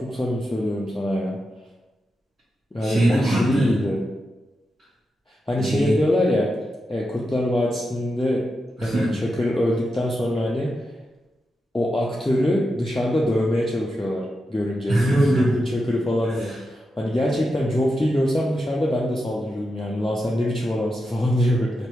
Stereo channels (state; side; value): normal; both; correlation 0.88